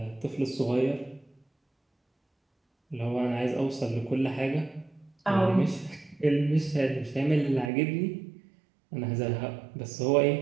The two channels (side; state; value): left; drops out; at 7.7 s